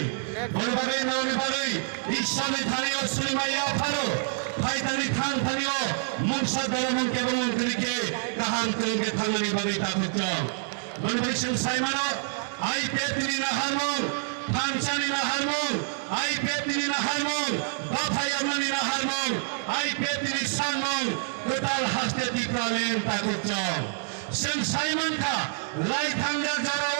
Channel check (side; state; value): left; silent; digital silence